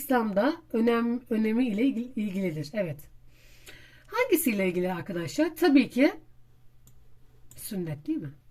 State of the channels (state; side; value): identical; both; correlation 1.00